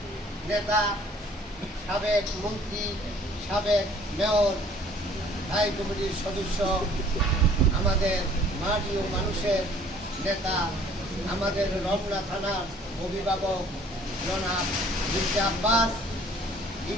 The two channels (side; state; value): both; normal; correlation 0.55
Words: নেতা, সাবেক মন্ত্রী, সাবেক মেয়র, হাই কমিটির সদস্য, আমাদের মাটি ও মানুষের নেতা, আমাদের রমনা থানার অভিভাবক জনাব মির্জা আব্বাস,